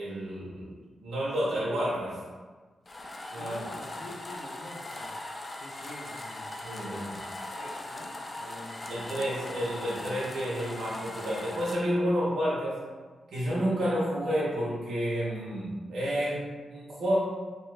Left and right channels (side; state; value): both; normal; correlation 0.87